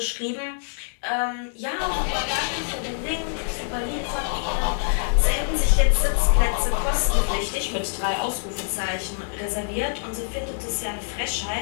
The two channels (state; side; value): silent; right; digital silence